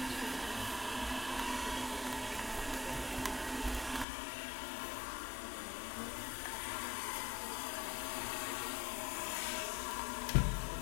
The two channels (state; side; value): drops out; right; at 4.0 s